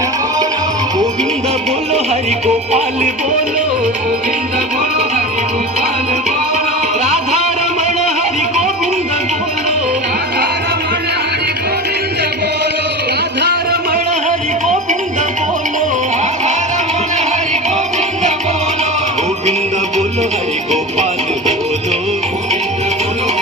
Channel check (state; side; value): normal; both; correlation 0.29